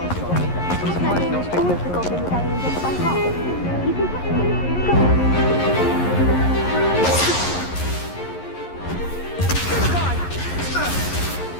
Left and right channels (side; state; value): right; late; 11 ms